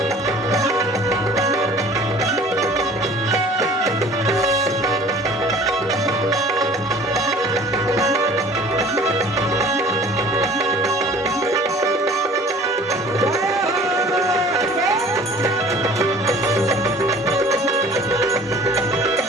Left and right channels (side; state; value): both; normal; correlation 0.48